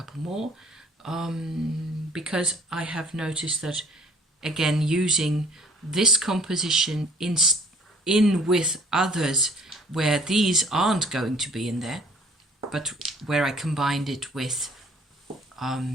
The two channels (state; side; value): normal; both; correlation 0.55